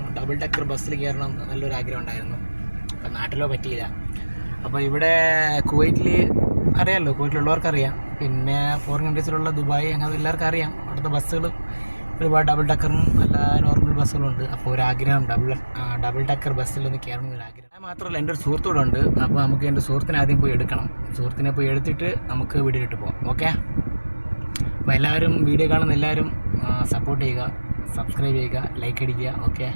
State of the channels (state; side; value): inverted; both; correlation -1.00